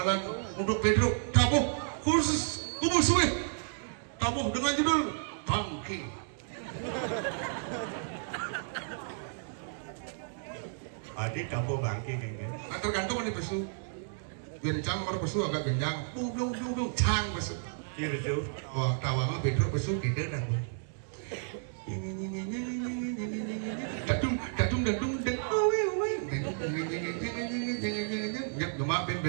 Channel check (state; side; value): silent; left; digital silence